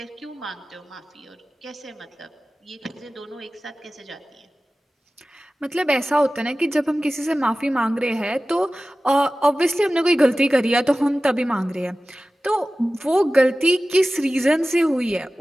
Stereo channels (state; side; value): normal; both; correlation 0.96